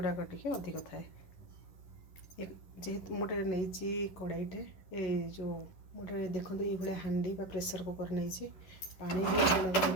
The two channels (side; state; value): right; late; 11 ms